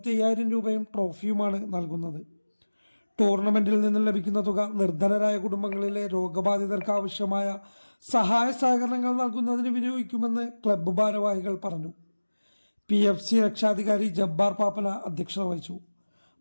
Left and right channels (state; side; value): inverted; both; correlation -1.00